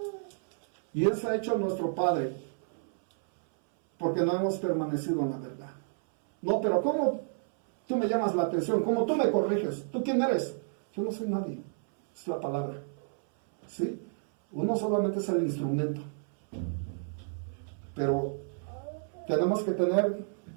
Y él se ha hecho nuestro padre, porque no hemos permanecido en la verdad. No, pero ¿cómo tú me llamas la atención? ¿Cómo tú me corriges? ¿Tú quién eres? Yo no soy nadie. Es la palabra. ¿Sí? Uno solamente es el instrumento. Pero tenemos que tener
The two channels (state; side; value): silent; left; 57 dB below the other